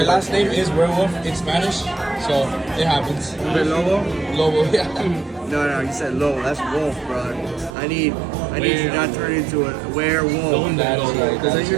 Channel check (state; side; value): drops out; left; at 7.8 s